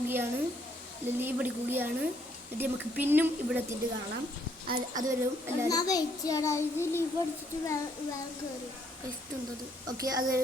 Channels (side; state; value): both; normal; correlation 0.69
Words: ലീവ് അടിക്കുകയാണ് എന്നിട്ട് നമുക്ക് പിന്നും ഇവിടെ എത്തിയിട്ട് കാണാം അതുവരെ ഓക്കെ